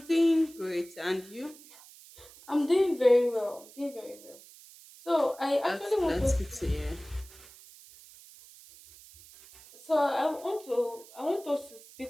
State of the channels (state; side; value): noise; right; hiss, 21 dB below the sound